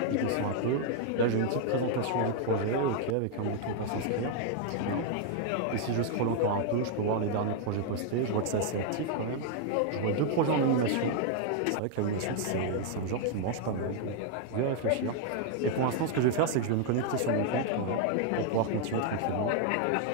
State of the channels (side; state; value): both; different; correlation 0.00